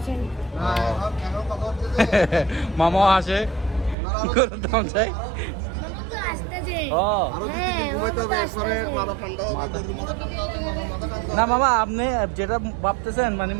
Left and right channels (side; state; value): left; drops out; at 4.0 s